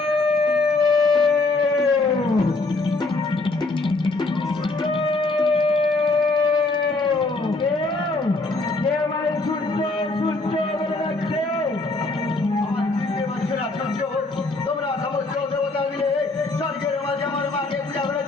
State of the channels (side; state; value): right; quieter; 3.3 dB